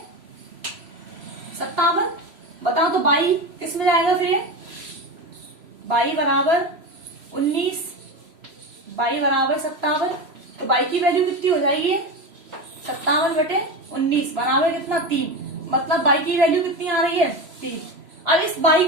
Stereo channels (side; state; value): left; late; 3.0 ms